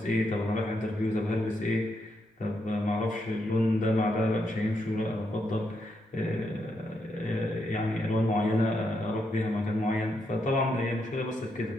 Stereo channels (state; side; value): normal; both; correlation 0.80